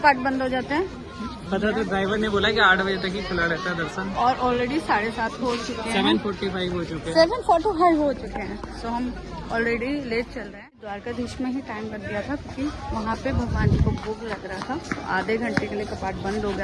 बंद हो जाते हैं? पता तो ड्राइवर ने बोला कि 8 बजे तक ही खुला रहता है दर्शन। और ऑलरेडी 7:30 हो चुके हैं। 7:45 हो चुके हैं। 7:45 हो चुके हैं। सो हम ऑलरेडी लेट चल रहे हैं। द्वारकाधीश में ही टाइम लग गया था क्योंकि वहाँ पे भगवान जी को भोग लग रहा था। तो आधे घंटे के लिए कपाट बंद हो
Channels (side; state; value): both; identical; correlation 1.00